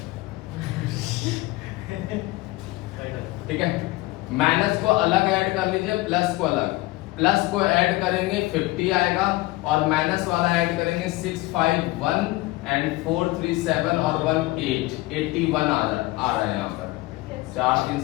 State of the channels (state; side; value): quieter; right; 20.0 dB